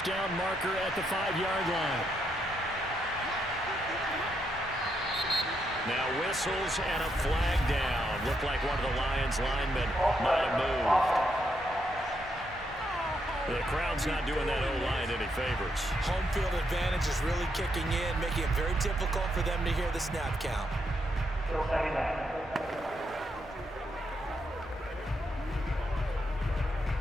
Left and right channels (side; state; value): both; normal; correlation 0.79